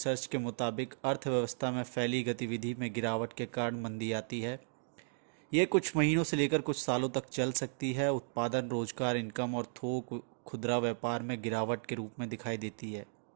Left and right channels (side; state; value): left; silent; digital silence